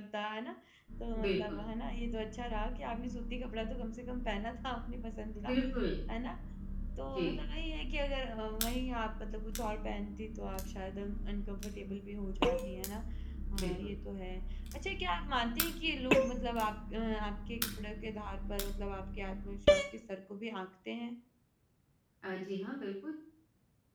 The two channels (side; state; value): both; identical; correlation 1.00